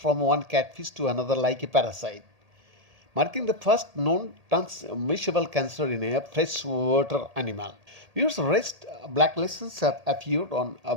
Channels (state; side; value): late; left; 1.8 ms